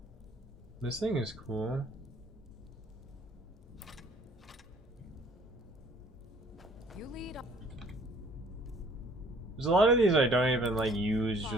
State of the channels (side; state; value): both; normal; correlation 0.57